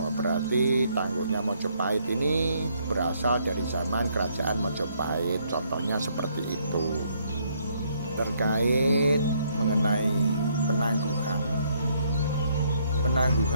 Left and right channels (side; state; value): both; inverted; correlation -0.70